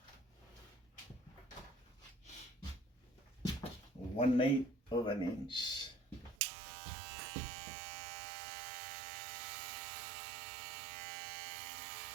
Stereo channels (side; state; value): left; drops out; at 6.4 s